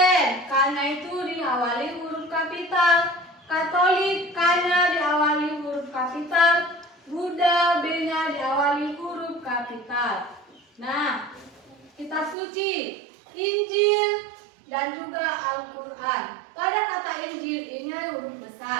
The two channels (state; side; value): drops out; left; at 12.4 s